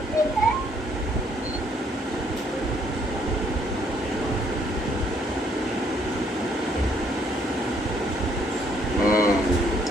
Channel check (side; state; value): both; normal; correlation 0.67